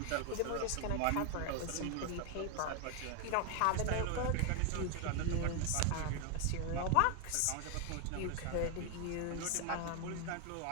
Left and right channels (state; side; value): different; both; correlation 0.01